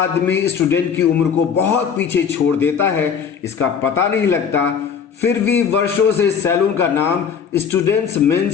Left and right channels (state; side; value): quieter; right; 7.0 dB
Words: स्टूडेंट की उम्र को बहुत पीछे छोड़ देता है इसका पता नहीं लगता, फिर भी वर्षों से सैलून का नाम स्टूडेंट्स